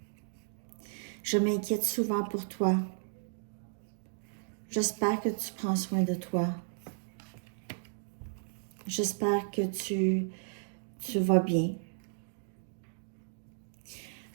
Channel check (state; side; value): silent; left; digital silence